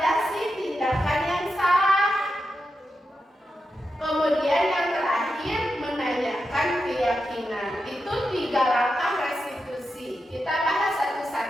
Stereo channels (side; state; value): both; normal; correlation 0.88